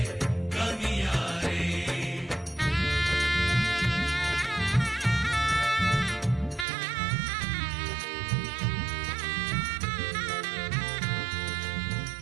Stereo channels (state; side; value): drops out; left; at 6.7 s